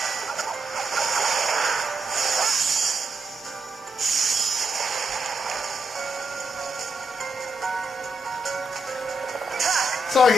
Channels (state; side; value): normal; both; correlation 0.82